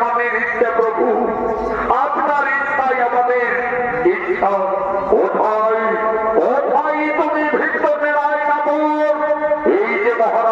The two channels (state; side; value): identical; both; correlation 1.00